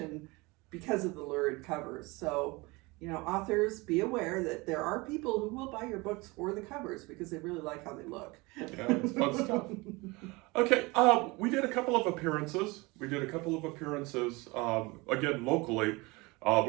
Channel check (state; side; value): quieter; left; 24.5 dB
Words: because of the lurid covers. So, you know, authors, be aware that there are people who will buy your books for the covers because they really like how they look. Yeah, it's fun stuff. Okay, we did a couple of appearances. Again, locally.